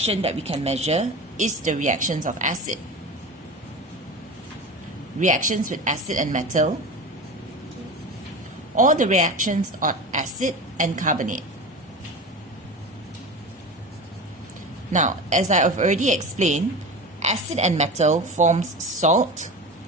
that we can measure is the reactions of acid. Reactions with acid and metal, or the reactions of acid and carbonate. Now, as I have already explained, acid and metal forms salt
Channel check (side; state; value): both; normal; correlation 0.29